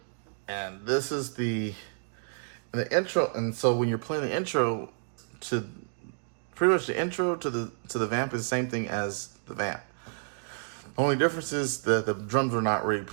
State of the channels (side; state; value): left; silent; digital silence